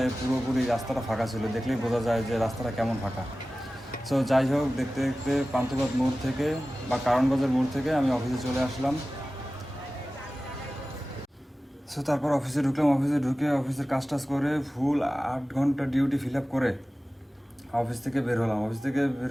পুরোপুরি রাস্তাটা ফাঁকা ছিল, দেখলেই বোঝা যায় যে রাস্তাটা কেমন ফাঁকা। সো যাই হোক, দেখতে দেখতে পান্থপথ মোড় থেকে বা কারণ বাজার মোড় থেকে আমি অফিসে চলে আসলাম। সো তারপর অফিসে ঢুকলাম, অফিসে ঢুকে অফিসের কাজ টাজ করে ফুল 8 ঘন্টা ডিউটি ফিল আপ করে অফিস থেকে বের হলাম। অফিস থেকে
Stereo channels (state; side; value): normal; both; correlation 0.96